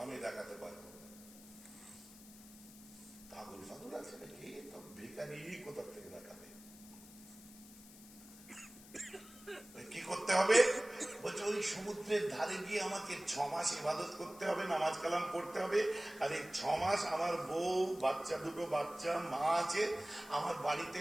আমি দেখাতে পারবো। পাগল ফাগল আছে নাকি? তো ভিখারি কোথা থেকে দেখাবে? কি করতে হবে? বলছে ওই সমুদ্রের ধারে গিয়ে আমাকে 6 মাস ইবাদত করতে হবে, নামাজ কালাম পড়তে হবে, আর এই 6 মাস আমার বউ, বাচ্চা, দুটো বাচ্চা, মা আছে, আমার বাড়িতে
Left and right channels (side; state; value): left; noise; hiss, 19 dB below the sound